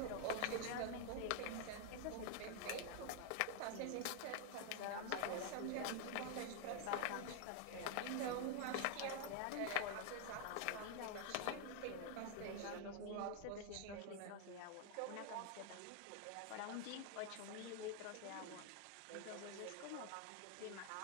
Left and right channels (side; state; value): both; different; correlation 0.00